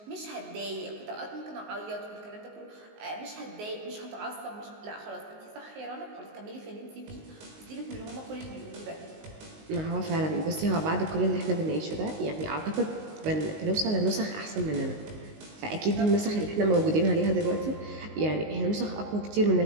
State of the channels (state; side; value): late; left; 19 ms